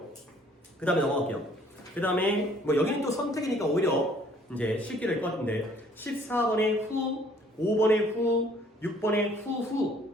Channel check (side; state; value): both; normal; correlation 0.59